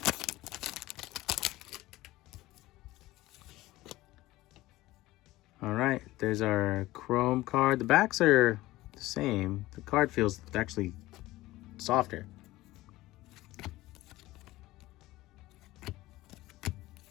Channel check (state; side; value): quieter; right; 17.8 dB